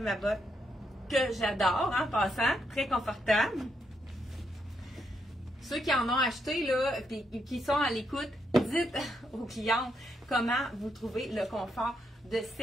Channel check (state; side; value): normal; both; correlation 0.79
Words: ma botte que j'adore en passant. Très confortable. Ceux qui en ont acheté là, et qui sont à l'écoute, dites aux clientes comment vous trouvez le confort de